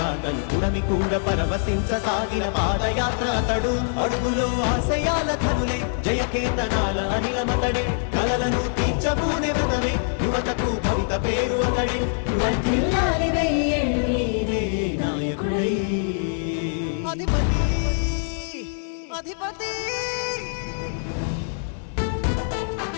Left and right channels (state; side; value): silent; right; 63 dB below the other